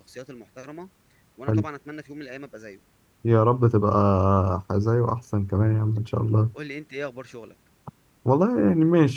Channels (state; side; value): identical; both; correlation 1.00